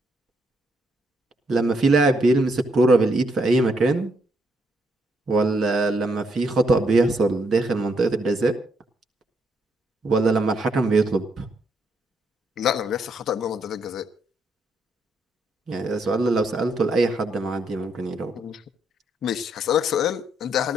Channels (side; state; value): both; normal; correlation 0.75